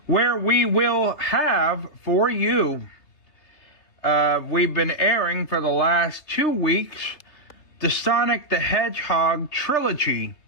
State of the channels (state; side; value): late; right; 3.2 ms